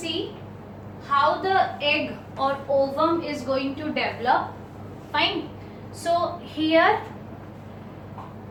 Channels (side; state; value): both; identical; correlation 1.00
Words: how the egg or ovum is going to develop. Fine. So here